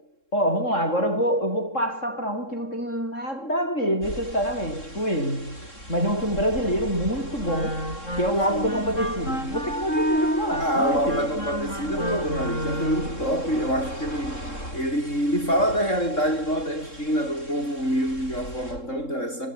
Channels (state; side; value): late; right; 3.7 ms